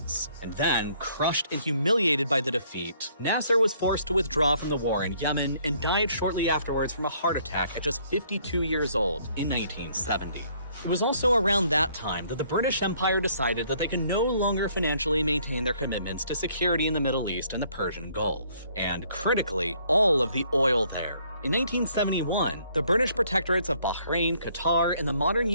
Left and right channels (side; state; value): both; inverted; correlation -0.64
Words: And then, crushed and humiliated by the defeat, Nasser was forced to withdraw from the war in Yemen and died shortly afterwards from a heart attack at just 52 years old in 1970. It was also around that time that the British Empire decided that they could no longer financially maintain their commitments to security in the Middle East and the Persian Gulf, and critically, all of the oil there. In 1971, the British protectorates of Bahrain, Qatar, and the modern